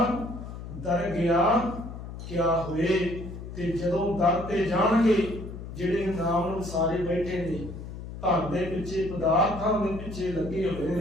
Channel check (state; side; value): noise; left; hum, 10 dB below the sound